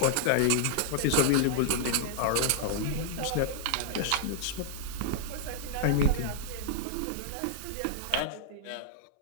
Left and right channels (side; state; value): both; different; correlation -0.01